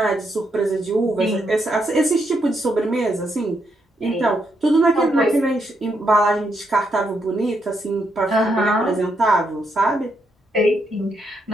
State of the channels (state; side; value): normal; both; correlation 0.78